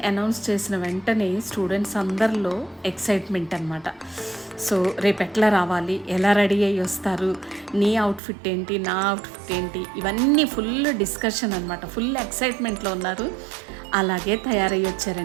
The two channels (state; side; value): drops out; left; at 8.2 s